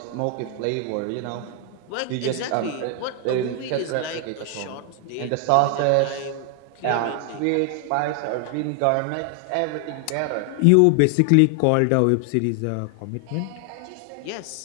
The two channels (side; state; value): both; different; correlation 0.00